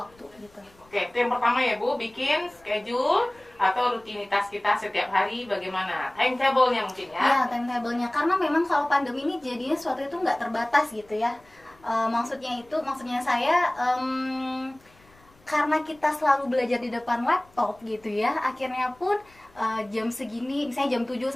gitu. Oke, itu yang pertama ya Bu, bikin schedule atau rutinitas kita setiap hari bagaimana, timetable-nya mungkin ya. Ya, timetable-nya, karena memang kalau pandemi ini jadinya sesuatu itu nggak terbatas gitu ya. Maksudnya saya karena kita selalu belajar di depan laptop gitu ya, akhirnya pun jam segini, misalnya jam 7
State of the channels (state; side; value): noise; left; rumble, 29 dB below the sound